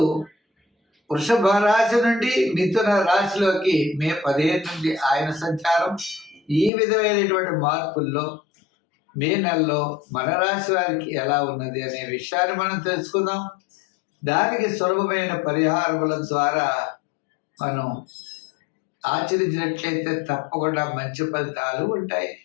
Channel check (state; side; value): drops out; right; at 6.7 s